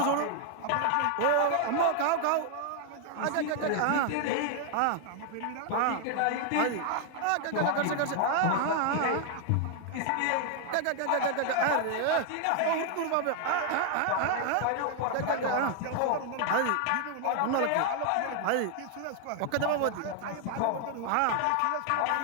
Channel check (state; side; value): different; both; correlation 0.00